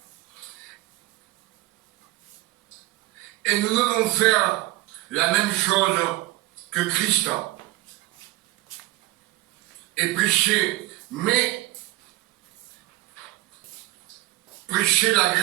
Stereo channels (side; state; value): left; quieter; 17.8 dB